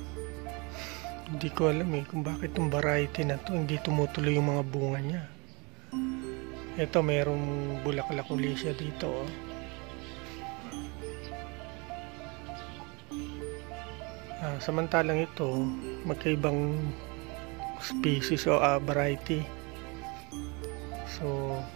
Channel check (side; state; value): left; quieter; 29.1 dB